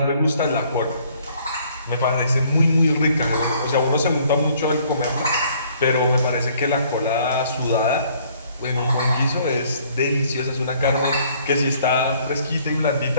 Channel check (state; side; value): inverted; both; correlation -0.61